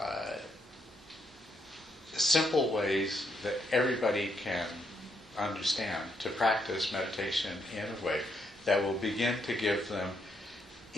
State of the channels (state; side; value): normal; both; correlation 0.76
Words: simple ways that everybody can understand, to practice meditation in a way that will begin to give them